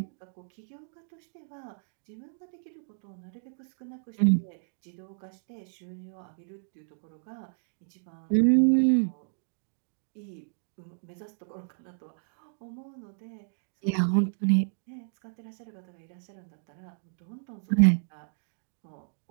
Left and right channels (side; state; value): left; silent; digital silence